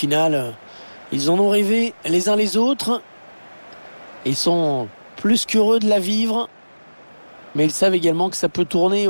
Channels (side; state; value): both; inverted; correlation -1.00